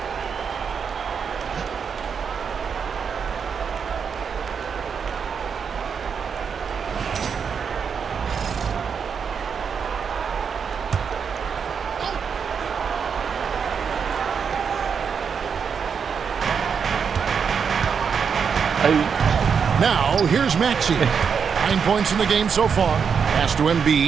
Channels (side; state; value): left; quieter; 6.5 dB